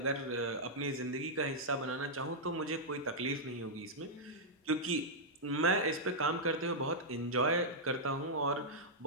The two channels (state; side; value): normal; both; correlation -0.08